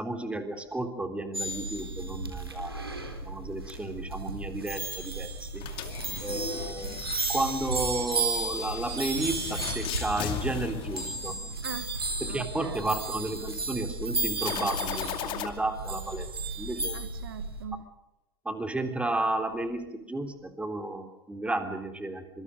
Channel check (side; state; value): both; normal; correlation 0.38